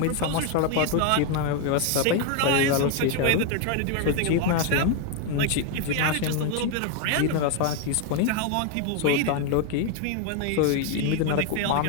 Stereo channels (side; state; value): both; different; correlation 0.01